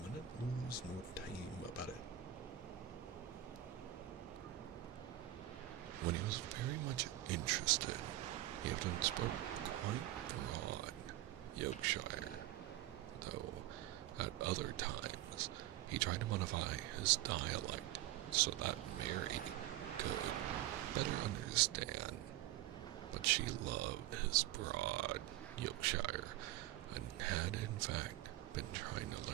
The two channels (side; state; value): left; quieter; 13.8 dB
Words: lose no time about it. When he was very much interested, he often spoke quite broad Yorkshire, though at other times he tried to modify his dialect so that Mary could better understand. But she loved his broad Yorkshire and had in fact been trying to